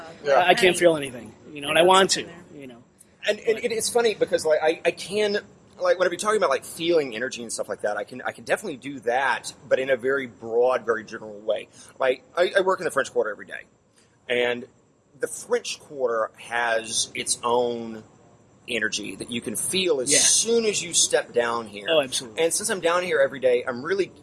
I can't feel anything, and I want to. And it's funny because I can, whenever you're talking about feeling energy and stuff like that, I can definitely do that, but in a very broad, very general way. I work in the French Quarter every day, and the French Quarter has its own energy that you can feel as soon as you step down here. Oh, absolutely. And since I'm down here every day, I'm really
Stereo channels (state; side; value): identical; both; correlation 1.00